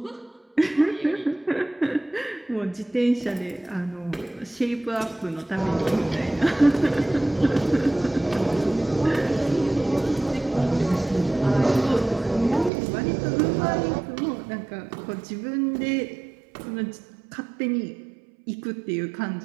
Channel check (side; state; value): left; drops out; at 12.7 s